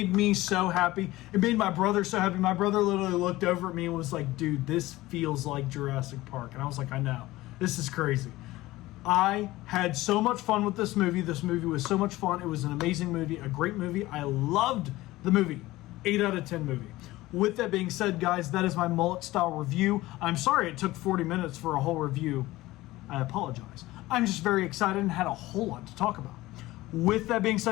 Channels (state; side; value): quieter; right; 18.0 dB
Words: me so happy. It made my brother so happy. My brother literally looked over at me and was like, dude, this feels like Jurassic Park. And I was like, I know. This is crazy. I had so much fun with this movie. This movie was so much fun. It was an amazing movie, a great movie. I loved the movie. 8 out of 10 movie. With that being said, guys, that is my Mullet style review. I'm sorry it took 40 minutes for a whole review. I apologize. I'm just very excited and had a whole lot to talk about. With that being